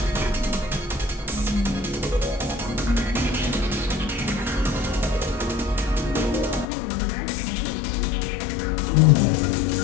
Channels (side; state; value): right; drops out; at 6.7 s